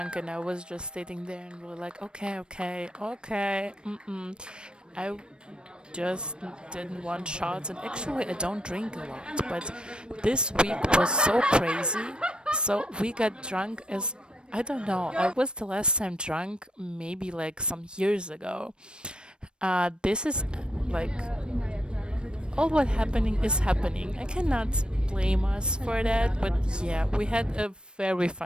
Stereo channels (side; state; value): left; late; 0.053 ms